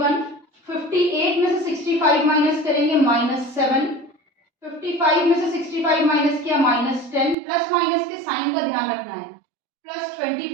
58 में से 65 माइनस करेंगे -7। 55 में से 65 माइनस किया -10। प्लस माइनस के साइन का ध्यान रखना है,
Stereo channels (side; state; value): left; drops out; at 7.4 s